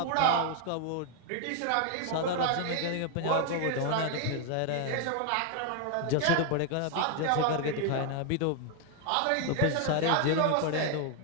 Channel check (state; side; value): different; both; correlation 0.00